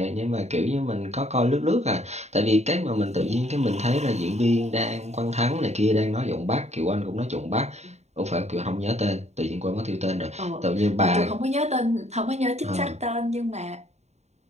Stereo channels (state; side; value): late; left; 0.32 ms